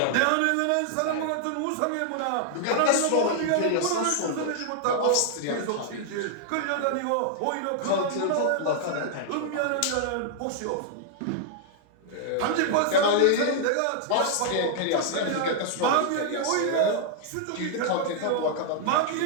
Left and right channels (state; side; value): different; both; correlation -0.01